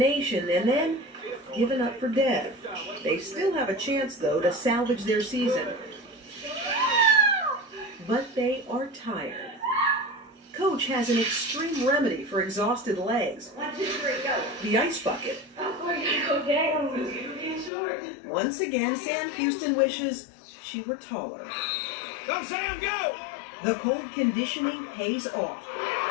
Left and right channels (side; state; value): right; drops out; at 17.7 s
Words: and then given up for dead. They still have a chance, though, to salvage their season. But they are tired. Coach has an extreme remedy for exhausted legs. 1, 2, 3, go. The ice bucket. Oh, we're gonna go down. It's getting short. Once again, Sam Houston wishes she were taller. Go, Sam, go! The cold conditioning pays off.